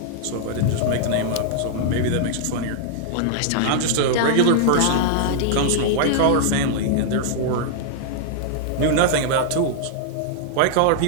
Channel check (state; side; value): different; both; correlation -0.01